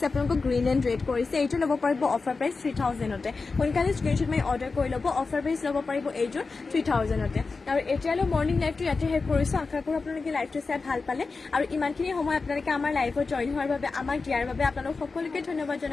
আপোনালোকক গ্ৰীণ এণ্ড ৰেড কৰিছে এইটো ল'ব পাৰিব অফাৰ প্ৰাইচ 3,000তে সোনকালে স্ক্ৰীনশ্বট মাৰি অৰ্ডাৰ কৰি ল'ব অফাৰ প্ৰাইচ ল'ব পাৰিব এইযোৰ 3,000তে আৰু এতিয়ালৈ মৰ্ণিং লাইভটো ইয়াতে শেষ কৰিছোঁ আশা কৰোঁ আপোনালোকে লাইভটো চাই ভাল পালে আৰু ইমানখিনি সময় আপোনালোকে আমাৰ লাইভত জইন হোৱাৰ বাবে আমাক দিয়াৰ বাবে আপোনালোক সকলোকে ধন্যবাদ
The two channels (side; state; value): right; quieter; 4.2 dB